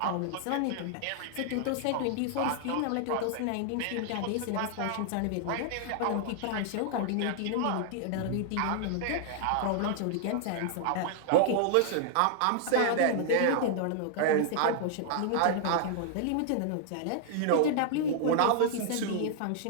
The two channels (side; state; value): both; different; correlation 0.00